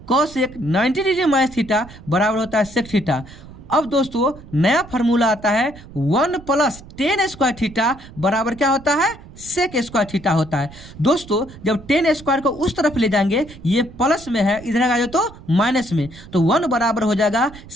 cosec 90 degree minus theta बराबर होता है सेक थीटा। अब दोस्तों नया फार्मूला आता है 1 प्लस टेन स्क्वायर थीटा बराबर क्या होता है सेक स्क्वायर थीटा होता है। दोस्तों जब टेन स्क्वायर को उस तरफ ले जाएंगे, ये प्लस में है, इधर आ जाए तो माइनस में, तो 1 बराबर हो जाएगा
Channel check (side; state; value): right; noise; rumble, 18 dB below the sound